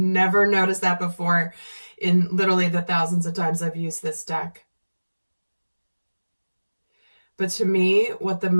noticed that before in literally the thousands of times I've used this deck. But to me, what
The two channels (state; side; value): inverted; both; correlation -1.00